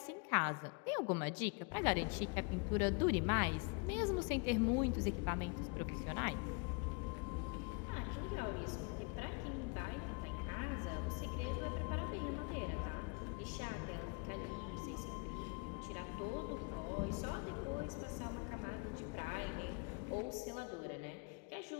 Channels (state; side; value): quieter; right; 32.2 dB